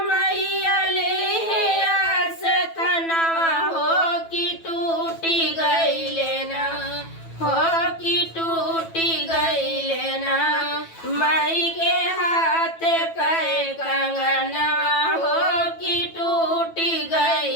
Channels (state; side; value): late; right; 9.1 ms